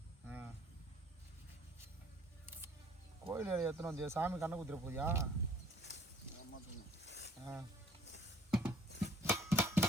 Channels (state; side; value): normal; both; correlation 0.55